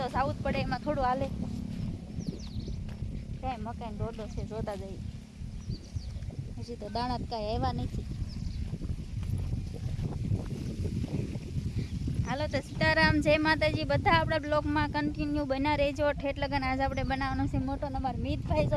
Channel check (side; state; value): both; identical; correlation 1.00